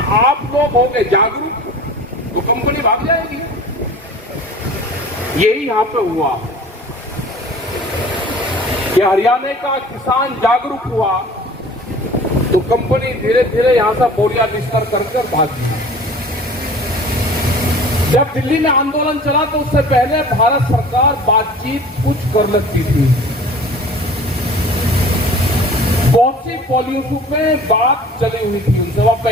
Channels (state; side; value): normal; both; correlation 0.44